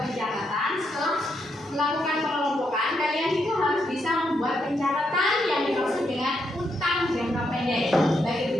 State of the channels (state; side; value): normal; both; correlation 0.79